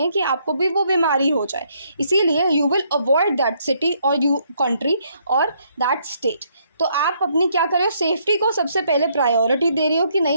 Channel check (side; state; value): both; inverted; correlation -0.70